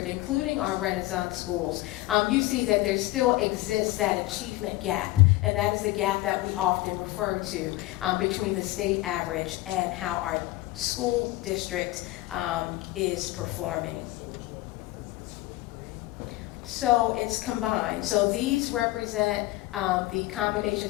including our Renaissance schools, you see that there still exists that achievement gap, and that is the gap that we often refer to between the state average and how our school district is performing. So it's combined. So these represent the combination.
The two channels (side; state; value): right; quieter; 18.3 dB